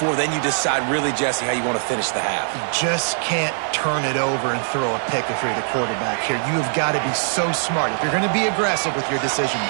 then you decide really, Jesse, how you want to finish the half. You just can't turn it over and throw a pick if you're the quarterback here. You have got to be so smart if you're going to be aggressive with your decision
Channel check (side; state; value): left; silent; digital silence